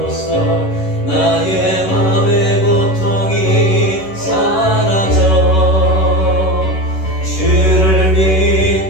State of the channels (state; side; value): late; right; 11 ms